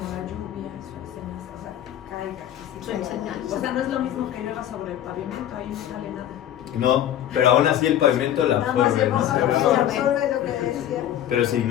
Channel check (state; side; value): quieter; right; 11.4 dB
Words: lluvia, su enseñanza, o sea, caiga. Su enseñanza. O sea, no es lo mismo que llueva sobre el pavimento, ahí no sale nada. No, pero aún así el pavimento la absorbe, ¿no? Absorbe lo que decía. Pero si